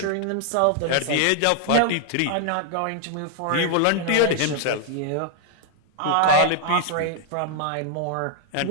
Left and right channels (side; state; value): both; different; correlation 0.00